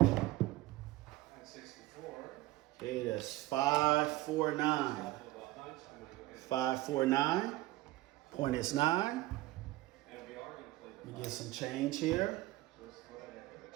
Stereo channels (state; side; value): quieter; left; 17.5 dB